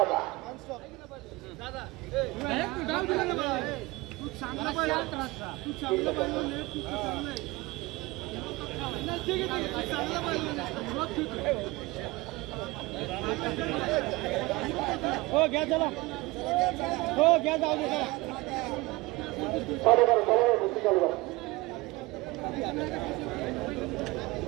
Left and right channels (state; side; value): quieter; left; 22.1 dB